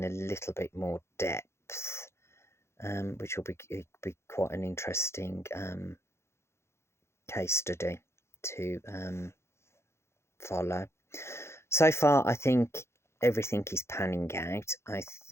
a little bit more depth, which will be quite an interesting case study to follow. So far, I think everything is panning out. I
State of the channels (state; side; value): late; right; 0.13 ms